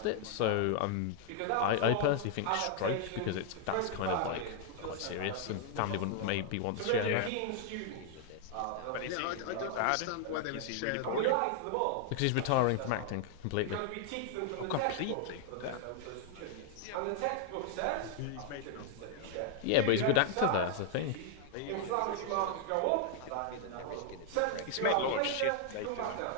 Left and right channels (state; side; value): different; both; correlation 0.00